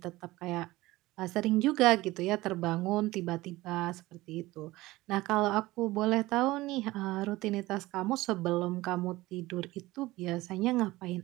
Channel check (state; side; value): quieter; left; 18.8 dB